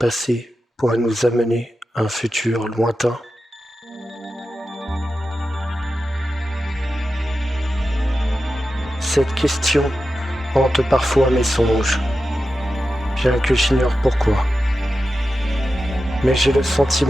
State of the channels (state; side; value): normal; both; correlation 0.91